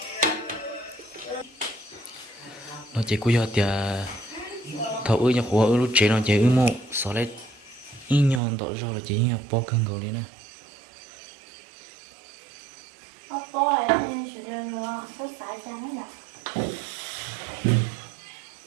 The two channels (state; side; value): drops out; left; at 8.4 s